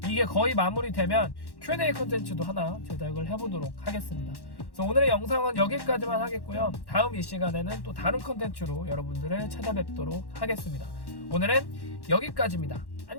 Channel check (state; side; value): late; right; 1.1 ms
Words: 이게 거의 마무리되면 Q&A 컨텐츠도 하나 제작을 해보도록 하겠습니다. 그래서 오늘의 영상은 여기까지만 하겠고요. 다음 이 시간에는 또 다른 컨텐츠로 여러분들을 찾아뵙도록 하겠습니다. 오늘은 여기까지입니다.